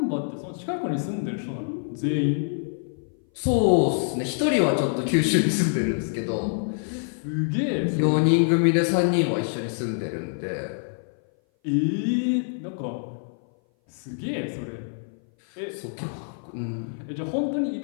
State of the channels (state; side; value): silent; right; 58 dB below the other